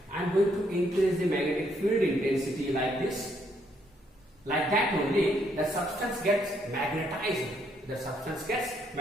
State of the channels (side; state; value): both; normal; correlation 0.72